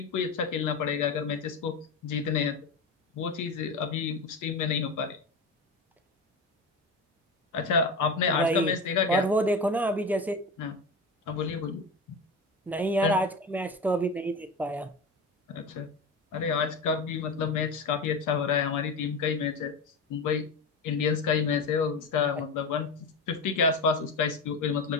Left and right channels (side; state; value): right; quieter; 3.3 dB